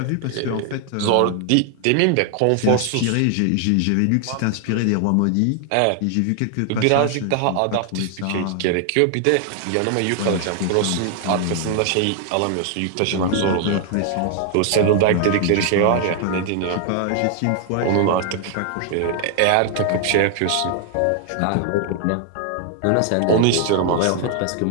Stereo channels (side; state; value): both; different; correlation 0.00